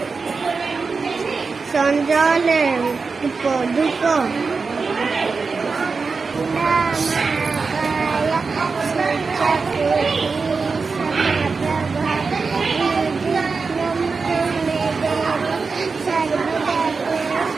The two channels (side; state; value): left; quieter; 4.6 dB